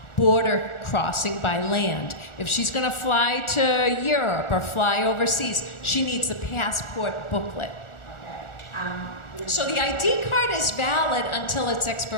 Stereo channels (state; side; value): late; right; 1.4 ms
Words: border crossing by land. If she's going to fly to Europe or fly overseas, she needs the passport booklet. So the ID card is valid until its